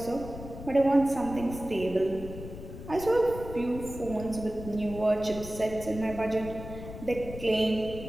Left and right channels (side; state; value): left; noise; rumble, 11 dB below the sound